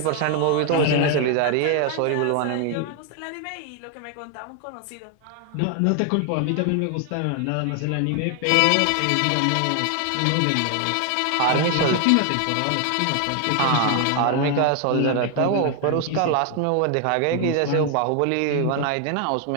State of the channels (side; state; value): both; different; correlation 0.00